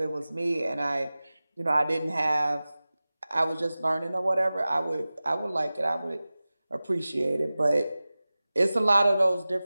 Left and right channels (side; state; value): both; inverted; correlation -0.97